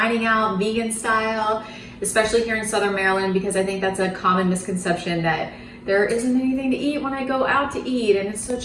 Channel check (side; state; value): both; identical; correlation 1.00